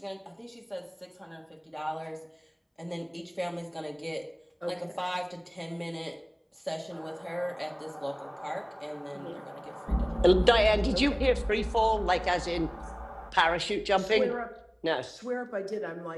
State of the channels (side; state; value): both; identical; correlation 1.00